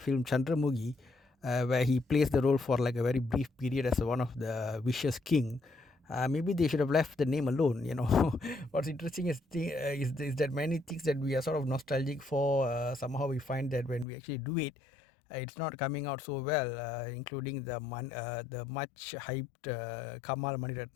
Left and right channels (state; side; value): drops out; right; at 14.1 s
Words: Chandramukhi, where he plays the role for like a very brief period as one of the vicious king. Maybe they should have left the name alone. What's interesting is that many things that we are sort of nostalgic for, somehow we find that when we actually do it, it's not coming out so well, including the much hyped Kamal